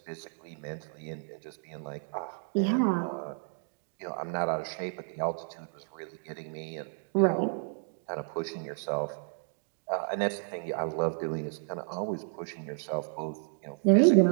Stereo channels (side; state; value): left; silent; digital silence